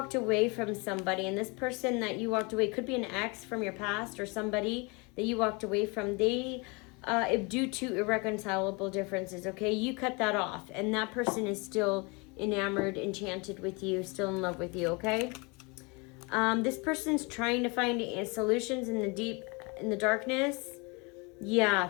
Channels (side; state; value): right; quieter; 29.2 dB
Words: away from somebody, and this person that you walked away could be an ex from your past, or somebody that you walked away from. Due to irreconcilable differences, okay, you cut that off, and that person is still enamored, enchanted with you, still in love with you, okay? This person's trying to find solutions in the darkness. Yeah,